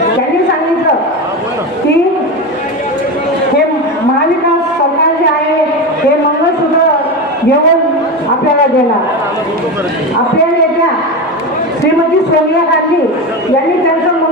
त्यांनी सांगितलं की हे महाविकास सरकार जे आहे हे मंगळसूत्र घेऊन आपल्याला देणार. आपल्या नेत्या श्रीमती सोनिया गांधी यांनी त्यांचं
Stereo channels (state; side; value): normal; both; correlation 0.20